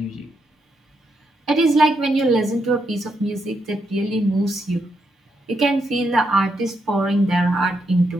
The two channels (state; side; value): normal; both; correlation 0.80